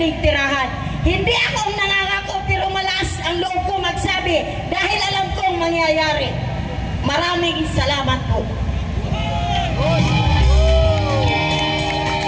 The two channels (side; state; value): both; identical; correlation 1.00